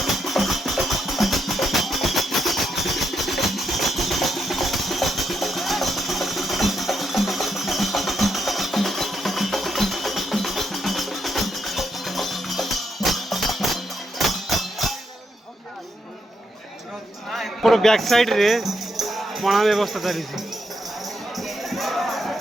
बैक साइड रे पणा व्यवस्था चली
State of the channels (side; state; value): both; normal; correlation 0.80